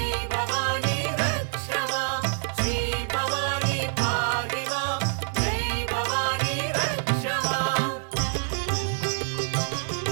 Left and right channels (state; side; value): silent; left; digital silence